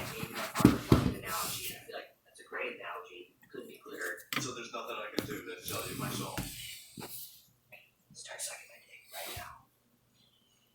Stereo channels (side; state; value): both; identical; correlation 1.00